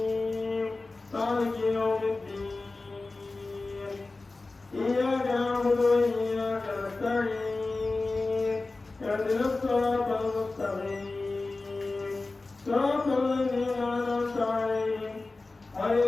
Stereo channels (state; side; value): quieter; right; 3.4 dB